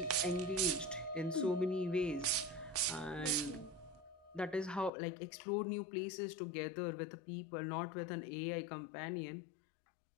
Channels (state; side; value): drops out; right; at 4.9 s